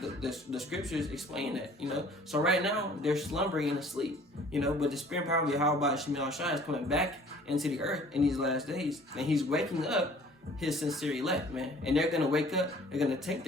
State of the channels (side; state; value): both; normal; correlation 0.52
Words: The scriptures explain that, So right now, they're slumbering and asleep, but the spirit and power of Yahweh Shai is coming back into the earth in these last days, and he's waking up his sincere elect, man. And they're going to wake up, they're going to take